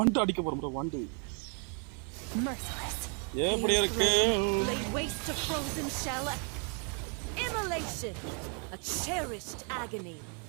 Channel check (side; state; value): left; quieter; 39.9 dB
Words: அடிக்க போறோம் ப்ரோ. வண்டு எப்படி இருக்கு? Laid waste to frozen shell. Immolation, a cherished agony.